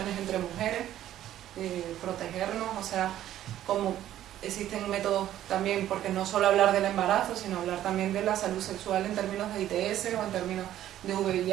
entre mujeres, protegernos, o sea, como existen métodos también, porque no solo hablar del embarazo, sino hablar también de la salud sexual en términos de ITS, o en términos de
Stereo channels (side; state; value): left; quieter; 12.4 dB